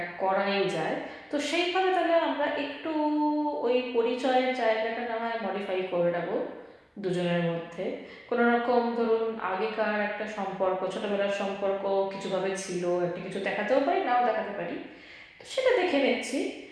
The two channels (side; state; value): both; identical; correlation 1.00